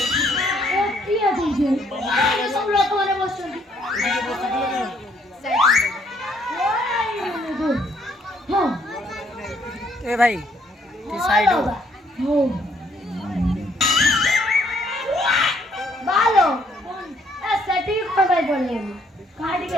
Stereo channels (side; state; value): both; normal; correlation 0.67